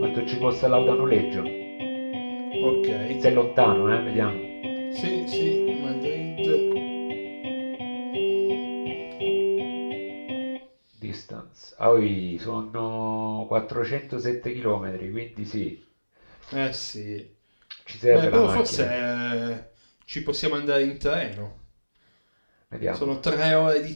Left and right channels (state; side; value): inverted; both; correlation -1.00